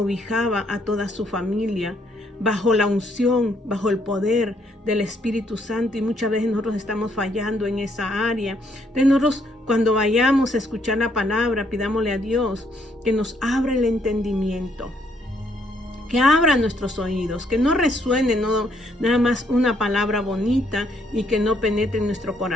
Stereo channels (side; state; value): both; normal; correlation 0.71